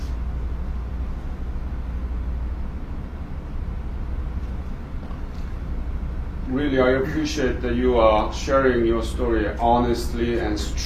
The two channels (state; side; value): identical; both; correlation 1.00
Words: Really, I appreciate that you are sharing your story honestly and